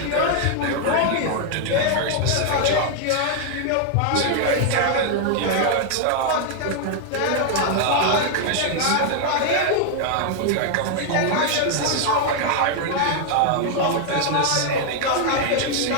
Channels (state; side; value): different; both; correlation 0.00